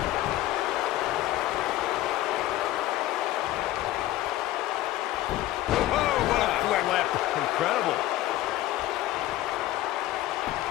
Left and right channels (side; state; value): right; quieter; 15.2 dB